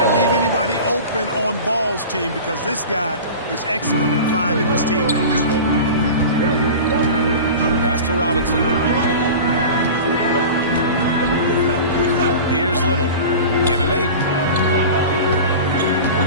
leave anybody open on Ball's team because this guy is excellent at finding his teammates. Pass to Robinson. Here's Little. Give him 8.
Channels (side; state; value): both; inverted; correlation -0.34